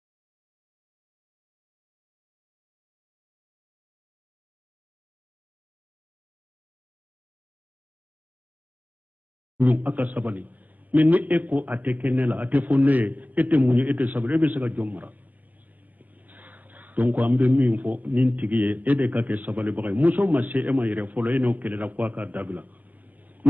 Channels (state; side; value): late; left; 0.081 ms